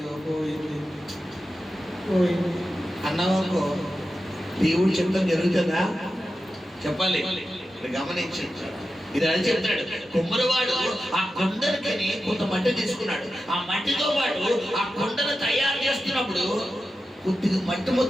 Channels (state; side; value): normal; both; correlation 0.91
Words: పోయింది అన్నవాళ్ళకు దేవుడు చెప్తాం జరుగుతుందా? చెప్పాలి. గమనించండి, ఇది అని చెప్తాడు. కుమ్మరివాడు ఆ కొండలకి కొంత మట్టి తీసుకున్నాడు. ఆ మట్టితో పాటు ఆ కొండను తయారు చేస్తున్నప్పుడు కొద్దిగా మట్టి